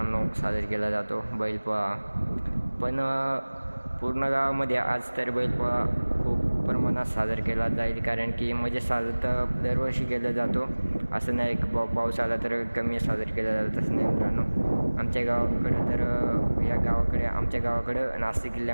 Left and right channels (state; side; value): inverted; both; correlation -1.00